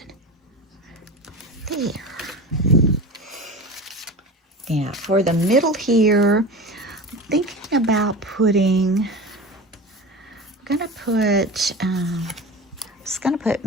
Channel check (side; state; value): both; normal; correlation 0.30